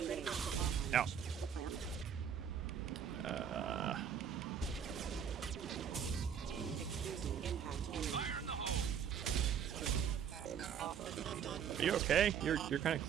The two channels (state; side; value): quieter; left; 7.9 dB